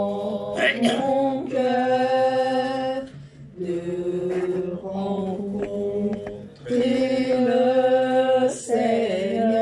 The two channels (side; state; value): both; identical; correlation 1.00